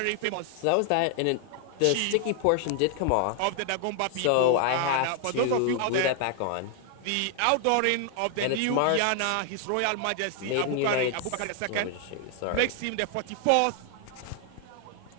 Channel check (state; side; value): different; both; correlation 0.00